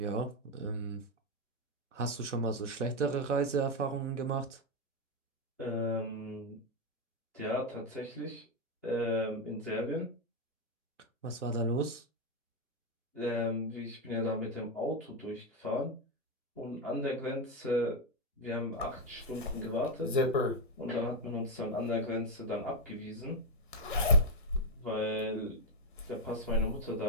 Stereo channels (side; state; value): both; normal; correlation 0.04